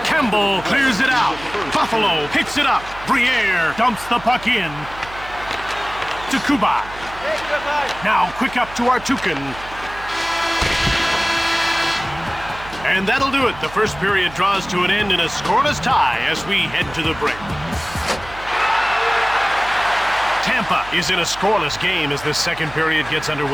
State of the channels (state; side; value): noise; right; hum, 17 dB below the sound